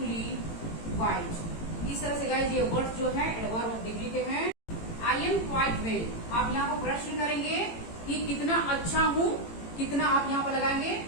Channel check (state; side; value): late; right; 18 ms